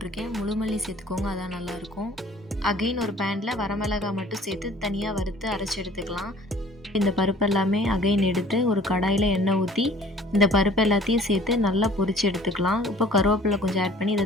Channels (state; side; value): normal; both; correlation 0.52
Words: முழுமல்லி சேர்த்துக்கோங்க, அதான் நல்லாயிருக்கும். அகைன் ஒரு பேனில் வரமிளகாய் மட்டும் சேர்த்து தனியாக வறுத்து அரைச்சி எடுத்துக்கலாம். இந்த பருப்பு எல்லாமே அகைன் எடுத்து ஒரு கடாயில் எண்ணெய் ஊற்றி இந்த பருப்பு எல்லாத்தையும் சேர்த்து நல்லா பொரித்து எடுத்துக்கலாம். இப்போ கருவேப்பிலை கொஞ்சம் ஆட் பண்ணி இதை